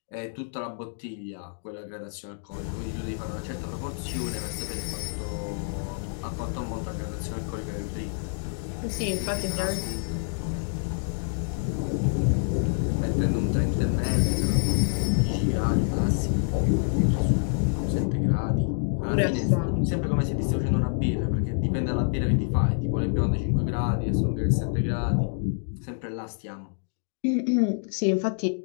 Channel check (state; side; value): silent; right; digital silence